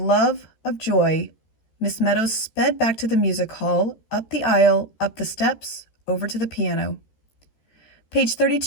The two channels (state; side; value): late; right; 13 ms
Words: of joy, Miss Meadows sped back to the music hall, up the aisle, up the steps, over to the piano. "Page